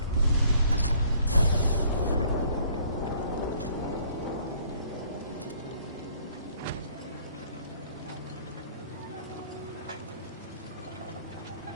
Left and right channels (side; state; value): both; inverted; correlation -0.59